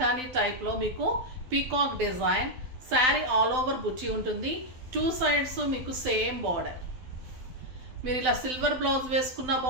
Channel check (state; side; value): late; left; 12 ms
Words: టైప్లో మీకు peacock design sari all over బుట్టి ఉంటుంది. 2 సైడ్స్ మీకు సేమ్ బార్డర్. మీరు ఇలా సిల్వర్ బ్లౌజ్ వేసుకున్నా